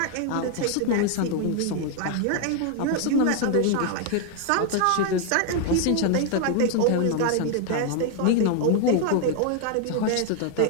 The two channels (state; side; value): different; both; correlation 0.00